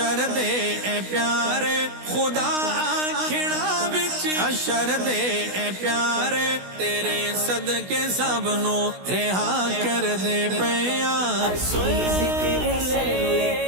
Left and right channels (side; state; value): left; late; 16 ms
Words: دے اے پیارے، خدا آکھڑا وچ حشر دے اے پیارے، تیرے صدقے سب نو رہا کر دے پیا، اسی ذکر صلی